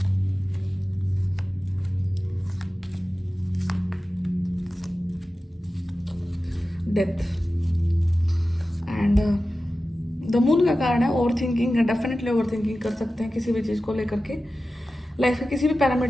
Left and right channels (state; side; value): normal; both; correlation 0.94